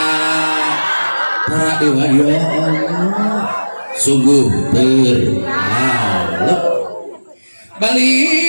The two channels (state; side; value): inverted; both; correlation -1.00